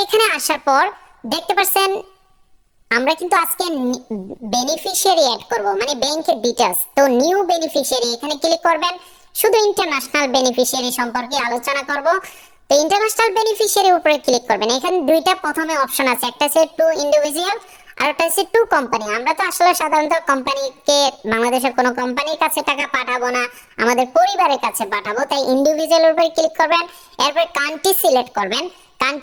এখানে আসার পর দেখতে পাচ্ছেন আমরা কিন্তু আজকে বেনিফিশিয়ারি অ্যাড করব, মানে ব্যাংকের ডিটেইলস। তো নিউ বেনিফিশিয়ারি এখানে ক্লিক করবেন। শুধু ইন্টারন্যাশনাল বেনিফিশিয়ারি সম্পর্কে আলোচনা করব। তো ইন্টারন্যাশনাল বেনিফিশিয়ারির উপরে ক্লিক করবেন। এখানে দুইটা প্রথমে অপশন আছে, একটা হচ্ছে টু ইন্ডিভিজুয়াল আর একটা হচ্ছে টু কোম্পানি। আমরা তো আসলে সাধারণত কোম্পানিকে, বাংলাদেশের কোনো কোম্পানির কাছে টাকা পাঠাবো না, আমাদের পরিবারের কাছে পাঠাবো, তাই ইন্ডিভিজুয়ালের উপরে ক্লিক করবেন। এরপর কান্ট্রি সিলেক্ট করবেন।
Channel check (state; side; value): identical; both; correlation 1.00